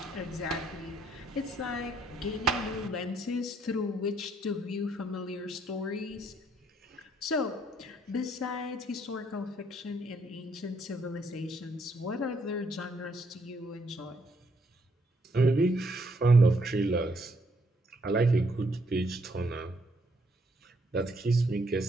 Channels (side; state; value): both; normal; correlation 0.71